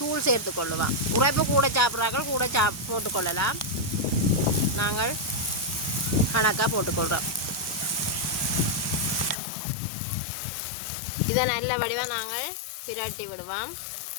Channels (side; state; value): right; drops out; at 9.3 s